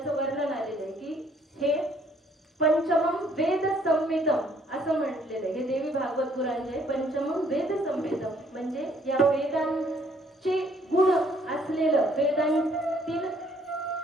वर्णन आलेलं आहे की हे पंचमम वेद संहितम असं म्हटलेलं आहे. हे देवी भागवत पुराण जे पंचमम वेद संहितम म्हणजे या वेदांचे गुण असलेलं,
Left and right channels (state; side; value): normal; both; correlation 0.64